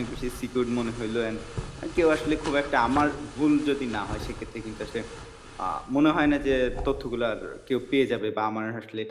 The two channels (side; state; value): both; identical; correlation 1.00